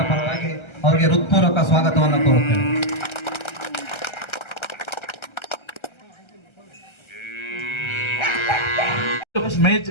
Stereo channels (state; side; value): late; right; 1.3 ms